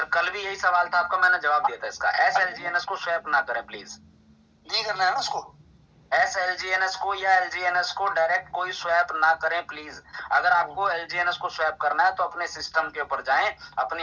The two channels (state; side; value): identical; both; correlation 1.00